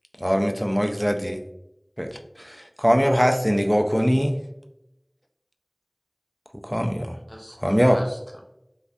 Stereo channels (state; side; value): identical; both; correlation 1.00